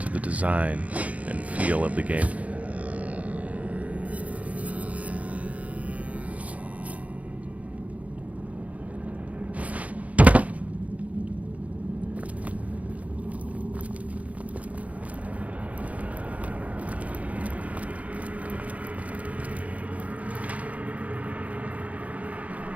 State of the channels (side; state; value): left; late; 0.068 ms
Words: the design and feel of the game.